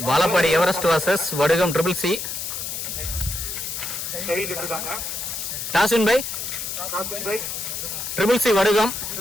Vazhappadi Everest versus Vadugam triple C. Toss win by triple C Vadugam.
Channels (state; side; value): noise; left; hiss, 5 dB below the sound